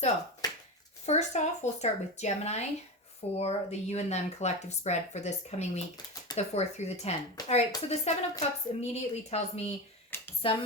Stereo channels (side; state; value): both; normal; correlation 0.21